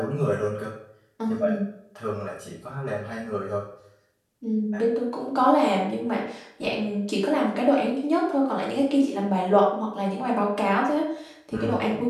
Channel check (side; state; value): both; identical; correlation 1.00